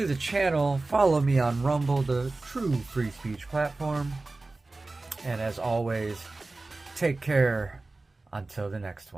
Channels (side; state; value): left; quieter; 3.3 dB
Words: the channel. Follow me on Rumble, the true free speech platform. And as always, take care until the next